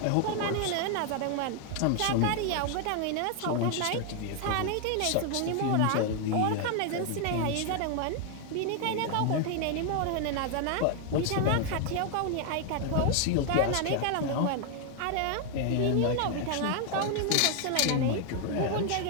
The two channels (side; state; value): both; different; correlation 0.00